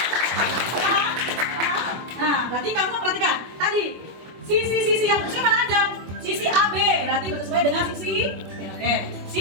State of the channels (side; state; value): left; late; 24 ms